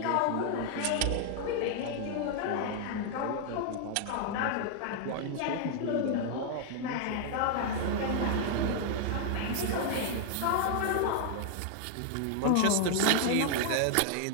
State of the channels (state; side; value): different; both; correlation 0.00